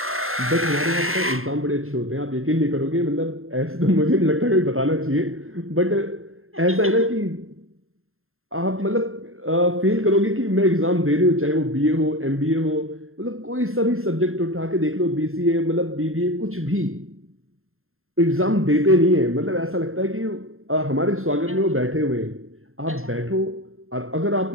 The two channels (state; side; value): late; left; 0.61 ms